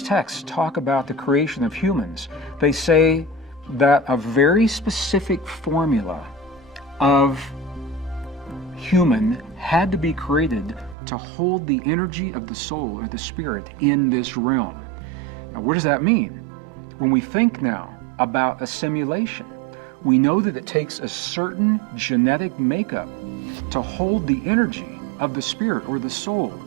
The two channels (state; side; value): drops out; left; at 11.0 s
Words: texts talk about the creation of humans, they say that a very specific formula of human had to be created to hold the energy of the soul or the spirit in this realm. Now, what does that mean? When we think now about a simulation, we know that it takes a certain genetic makeup to hold the energy of the spirit or the soul,